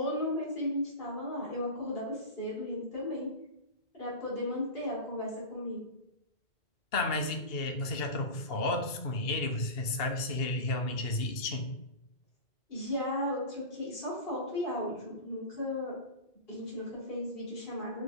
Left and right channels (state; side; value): late; right; 2.7 ms